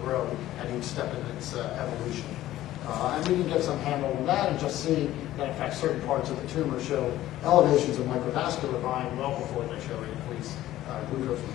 grow at each step in its evolution. And we can get some handle on that and just see that, in fact, certain parts of the tumor show elevations of microvascular volume well before they show increased glucose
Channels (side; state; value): right; quieter; 14.4 dB